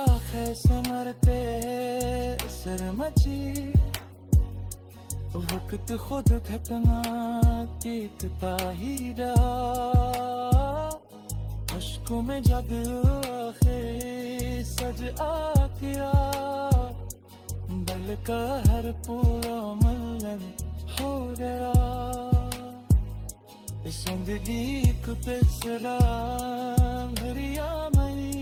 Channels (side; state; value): both; identical; correlation 1.00